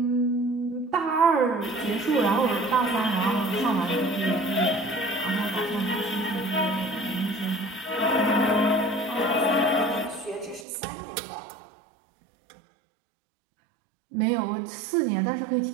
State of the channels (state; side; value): drops out; left; at 10.7 s